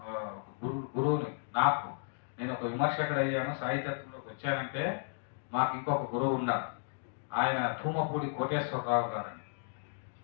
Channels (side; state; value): right; silent; digital silence